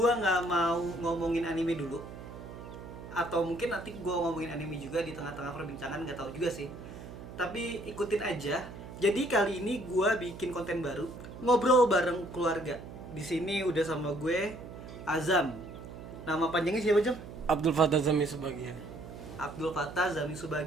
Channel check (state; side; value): noise; right; hum, 13 dB below the sound